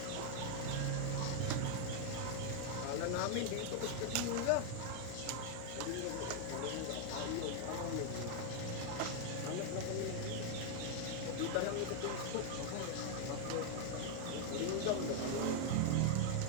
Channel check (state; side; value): different; both; correlation 0.00